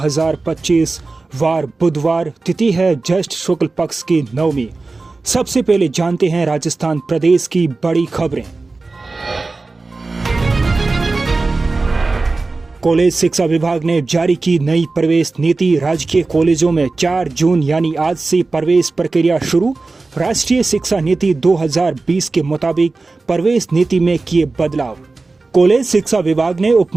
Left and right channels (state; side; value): quieter; left; 3.6 dB